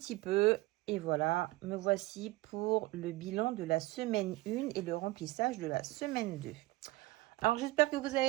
peu et voilà, me voici pour le bilan de la semaine 1 et le remplissage de la semaine 2. Alors j'espère que vous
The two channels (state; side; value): quieter; left; 19.8 dB